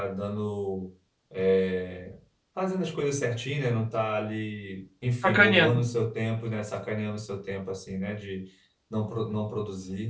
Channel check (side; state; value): both; identical; correlation 1.00